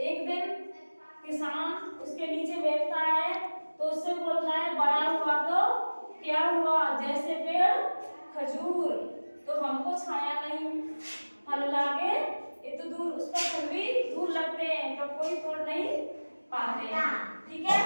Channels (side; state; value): both; inverted; correlation -1.00